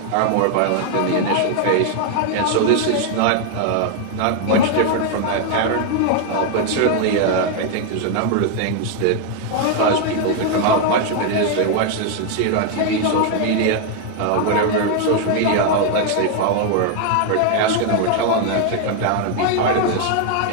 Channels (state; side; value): different; both; correlation 0.00